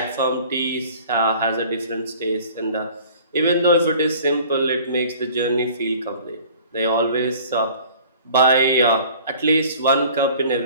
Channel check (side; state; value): both; inverted; correlation -0.48